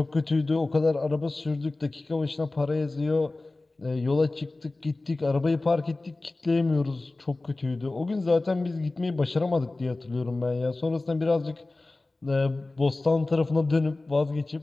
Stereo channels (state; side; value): quieter; right; 3.1 dB